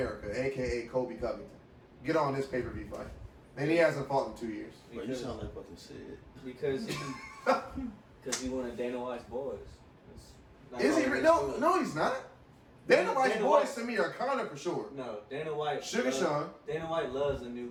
aka Colby Covington, get on this pay-per-view fight? And he hasn't fought in 2 years. Bro, you sound like fucking Sid. Because he one of Dana White's boys. Is he? No, he's not. Dana White's Dana boys White- to me are Conor for sure. No, Dana White. Sugar Sean. Dana White loves the new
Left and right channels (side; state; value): both; identical; correlation 1.00